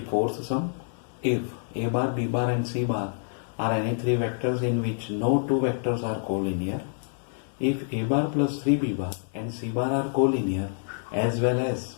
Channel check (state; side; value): silent; right; digital silence